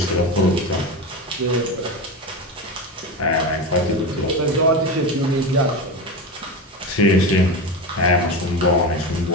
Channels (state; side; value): normal; both; correlation 0.21